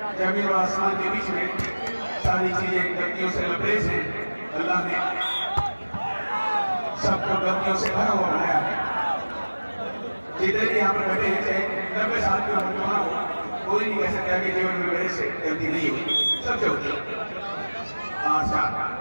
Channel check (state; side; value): inverted; both; correlation -1.00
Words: जमीन और आसमान के बीच में सारी चीजें गलतियों से लबरेज हैं। अल्लाह ने सबको गलतियों से भरा हुआ बनाया है। जितने भी यहाँ पर बैठे हैं, चाहे 90 साल की उम्र क्यों ना हो, कोई नहीं कह सकता कि जीवन में मेरे से गलती नहीं हुई, सबसे होती है। 5-4।